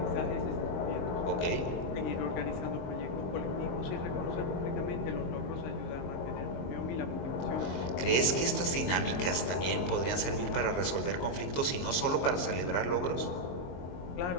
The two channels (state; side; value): late; right; 23 ms